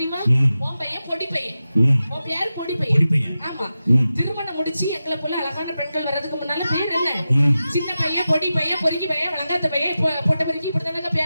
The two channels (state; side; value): inverted; both; correlation -0.92